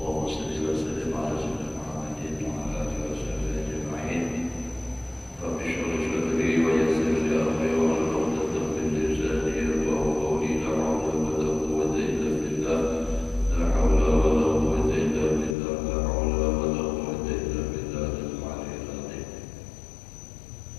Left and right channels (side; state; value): right; drops out; at 15.6 s